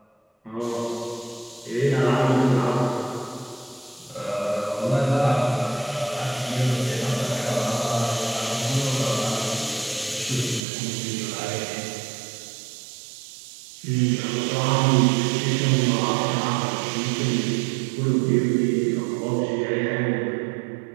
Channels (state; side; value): drops out; left; at 10.6 s